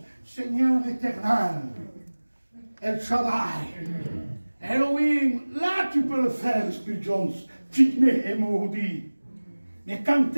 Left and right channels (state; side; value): inverted; both; correlation -1.00